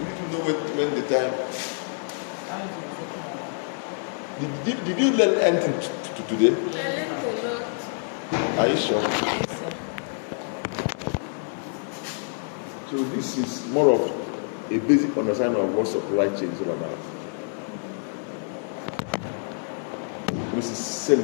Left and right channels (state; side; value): silent; right; 61 dB below the other